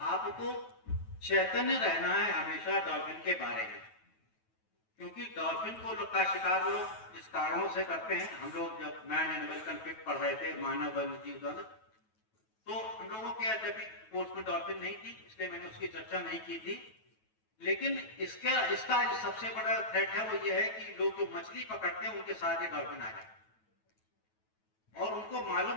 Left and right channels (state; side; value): late; right; 9.2 ms